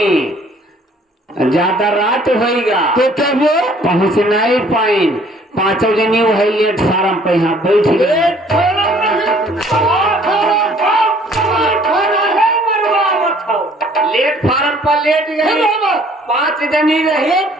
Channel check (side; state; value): both; normal; correlation 0.58